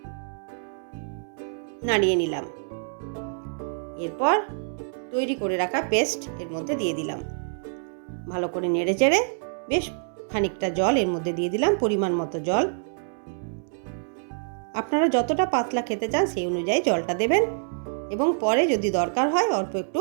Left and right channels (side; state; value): left; silent; digital silence